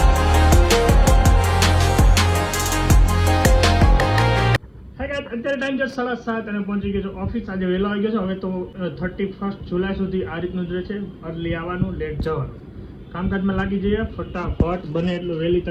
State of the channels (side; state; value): both; identical; correlation 1.00